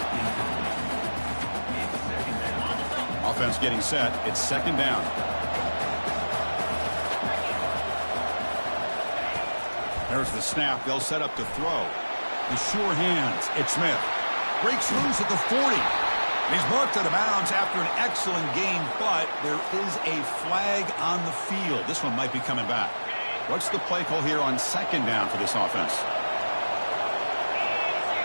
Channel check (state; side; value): inverted; both; correlation -1.00